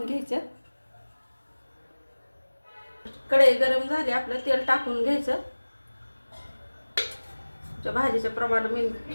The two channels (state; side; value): inverted; both; correlation -1.00